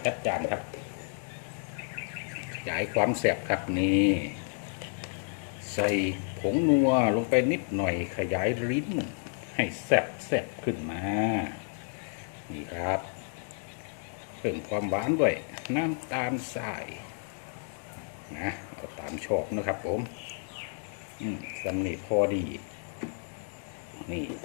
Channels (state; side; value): silent; right; 57 dB below the other